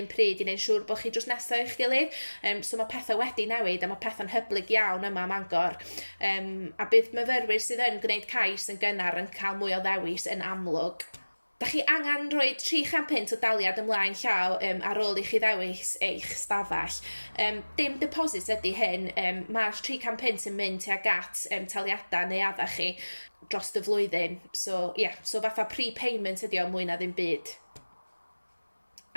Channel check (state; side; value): inverted; both; correlation -1.00